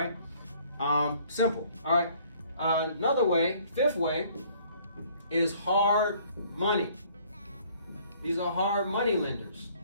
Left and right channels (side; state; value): both; inverted; correlation -0.59